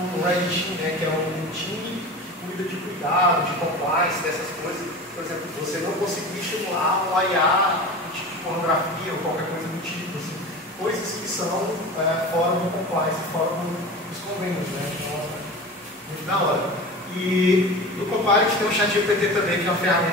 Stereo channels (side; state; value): both; normal; correlation 0.32